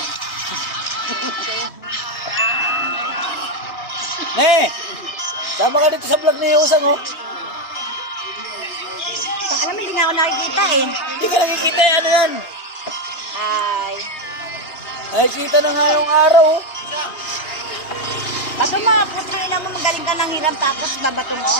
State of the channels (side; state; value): right; late; 3.0 ms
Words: Sama ka dito sa vlog ni Usang oh. Alam mo, hindi nga ako nakikita eh. Hindi ka nakikita ano yan? Ay. Nakikita na nga yung araw oh. Bato mo, putangina mo, magaling ka ng hiram tapos babato mo.